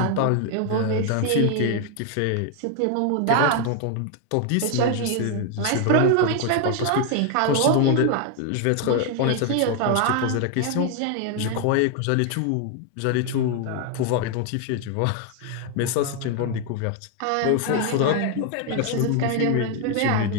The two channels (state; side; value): different; both; correlation 0.00